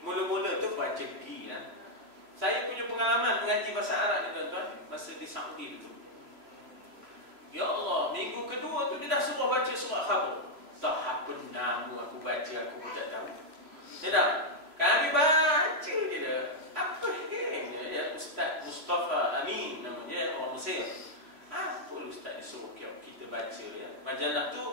mula-mula tu baca gi lah. Saya punya pengalaman mengaji bahasa Arab ni tuan-tuan, masa di Saudi tu. Ya Allah, minggu kedua tu dia dah suruh baca surah Khabar. Tak apa nama aku baca, aku pun tak tahu. Ya tak? Kami baca je dah. Apa dia? Ustaz Mustafa Amin namanya, orang Mesir. Apa ustaz ni suruh kita baca ya? Majalah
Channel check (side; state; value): left; late; 3.0 ms